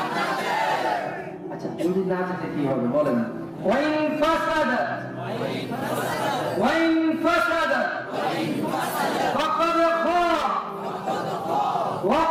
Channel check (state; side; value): identical; both; correlation 1.00